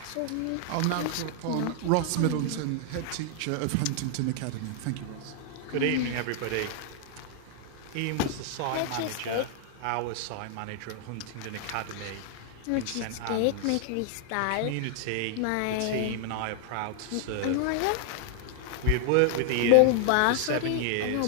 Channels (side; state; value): both; different; correlation 0.00